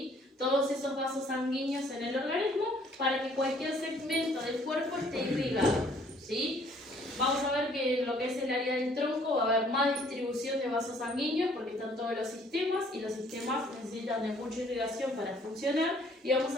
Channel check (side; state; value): both; normal; correlation 0.60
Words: Todos esos vasos sanguíneos en el organismo para que cualquier segmento del cuerpo esté irrigado, ¿sí? Vamos a ver que en lo que es el área del tronco va a haber más distribución de vasos sanguíneos porque están todos los sistemas y los sistemas necesitan de mucha irrigación para funcionar, y vamos